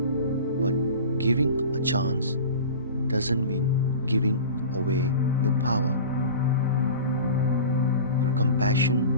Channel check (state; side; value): inverted; both; correlation -0.36